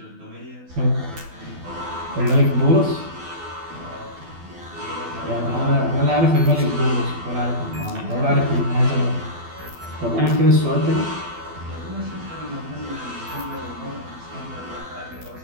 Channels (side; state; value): left; late; 12 ms